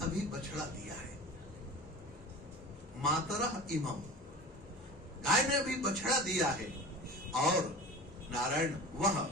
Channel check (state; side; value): normal; both; correlation 0.35